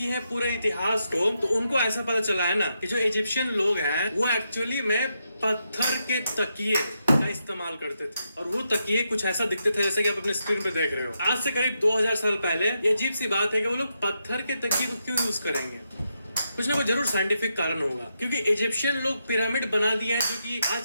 है पूरे इतिहास को, तो उनको ऐसा पता चला है ना कि जो इजिप्शियन लोग हैं वो एक्चुअली में पत्थर के तकिए का इस्तेमाल करते थे। और वो तकिए कुछ ऐसा दिखते थे जैसे कि आप अपने स्क्रीन पे देख रहे हो। आज से करीब 2000 साल पहले ये अजीब सी बात है कि वो लोग पत्थर के तकिए को क्यों यूज करेंगे। कुछ ना कुछ जरूर साइंटिफिक कारण होगा, क्योंकि इजिप्शियन लोग पिरामिड बना दिए हैं जो कि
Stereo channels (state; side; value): inverted; both; correlation -0.83